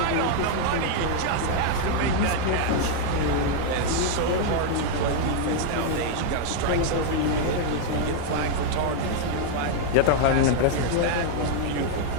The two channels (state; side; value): different; both; correlation 0.00